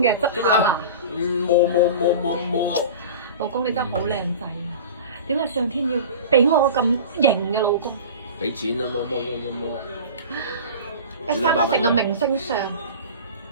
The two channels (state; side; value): inverted; both; correlation -0.35